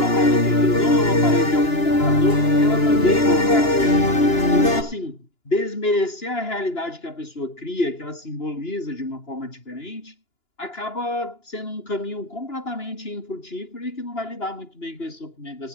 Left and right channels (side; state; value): right; late; 2.9 ms